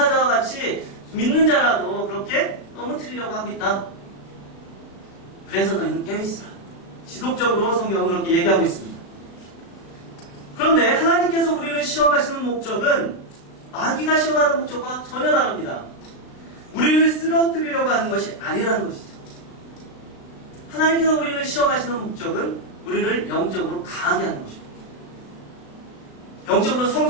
같이 믿는 자라도 그렇게 넘어뜨리려고 하고 있다. 그래서 너희는 깨어 있으라. 지속적으로 성경은 그렇게 얘기하고 있습니다. 그런데 하나님께서 우리를 시험하시는 목적은 마귀가 시험하는 목적과 전혀 다릅니다. 우리를 쓰러뜨리려고 하는 것이 아니라는 것이죠. 하나님께서 우리를 시험하시는 목적은 우리를 영적으로 강하게 하는 것입니다. 영적으로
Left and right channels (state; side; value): late; right; 36 ms